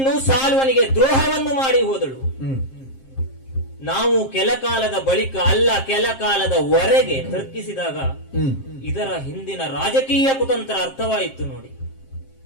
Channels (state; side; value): late; right; 7.5 ms